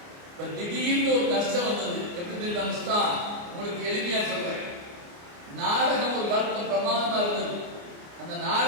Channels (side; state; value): left; late; 29 ms